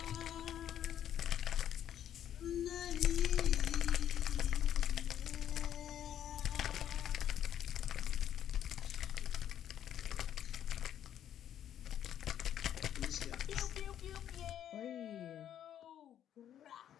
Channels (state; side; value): quieter; right; 10.4 dB